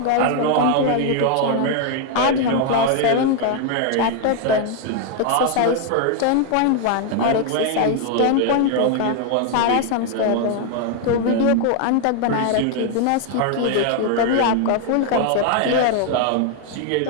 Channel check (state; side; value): different; both; correlation 0.00